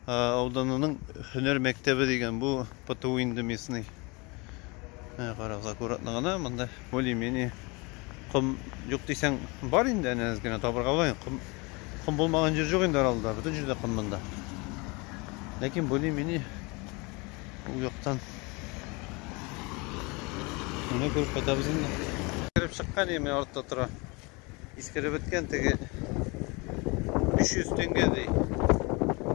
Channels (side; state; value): right; quieter; 27.3 dB